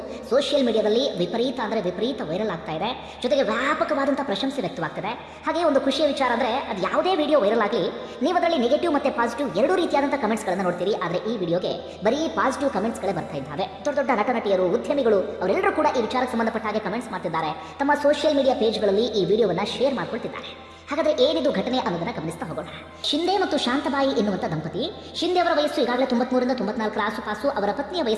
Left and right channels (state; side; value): identical; both; correlation 1.00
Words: ಸೋಷಿಯಲ್ ಮೀಡಿಯಾದಲ್ಲಿ ವಿಪರೀತ ವೈರಲ್ ಆಗ್ತಾ ಇದೆ. ಜೊತೆಗೆ ವ್ಯಾಪಕವಾದಂತಹ ಪ್ರಶಂಸೆ ವ್ಯಕ್ತವಾಗ್ತದೆ. ಹಾಗೆ ಒಂದು ಖುಷಿಯ ವಿಚಾರ ಅಂದರೆ, ಅದು ಯಾವುದೇ ವಿಡಿಯೋ ವೈರಲ್ ಆಗಲಿ, ನೀವು ಅದರಲ್ಲಿ ನೆಗೆಟಿವ್ ಮತ್ತು ಪಾಸಿಟಿವ್ ಎರಡೂ ರೀತಿಯಾದಂಥ ಕಮೆಂಟ್ಸ್ಗಳನ್ನು ನೋಡ್ತೀರಿ. ಆದರೆ ಈ ವಿಡಿಯೋಗೆ ಬರೀ ಪಾಸಿಟಿವ್ ಕಮೆಂಟ್ಸ್ಗಳೇ ಬರ್ತಾ ಇದ್ದಾವೆ. ದೊಡ್ಡ ದೊಡ್ಡ ನಟನಟಿಯರು, ಉದ್ಯಮಿಗಳು ಅವರೆಲ್ಲರೂ ಕೂಡ ಈ ವಿಚಾರಕ್ಕೆ ಸಂಬಂಧಪಟ್ಟ ಹಾಗೆ ಕಮೆಂಟ್ಸ್ ಮಾಡ್ತಿದ್ದಾರೆ. ತಮ್ಮ ಸೋಷಿಯಲ್ ಮೀಡಿಯಾ ಪೇಜ್ಗಳಲ್ಲಿ ಈ ವಿಡಿಯೋವನ್ನು ಶೇರ್ ಮಾಡ್ಕೊಳ್ತಿದ್ದಾರೆ. ಹಾಗಾದರೆ ಏನಿದು ಘಟನೆ ಅನ್ನೋದನ್ನ ಗಮನಿಸ್ತಾ ಹೋಗೋಣ. ಶಿಂದೆ ಮತ್ತು ಶಾಂತಬಾಯಿ ಎನ್ನುವಂಥ ದಂಪತಿ. ಶಿಂದೆ ಅವರ ವಯಸ್ಸು ಈಗಾಗಲೇ 93ರಿಂದ 94 ಆಸುಪಾಸು. ಅವರ ಪತ್ನಿಯ